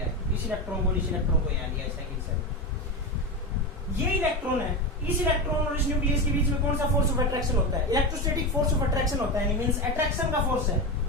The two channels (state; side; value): normal; both; correlation 0.18